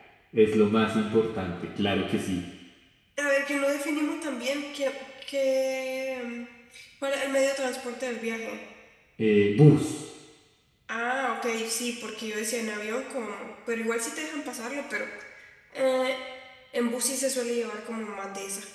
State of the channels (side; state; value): both; identical; correlation 1.00